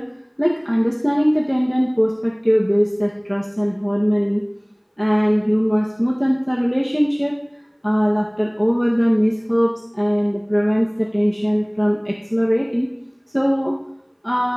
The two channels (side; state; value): both; identical; correlation 1.00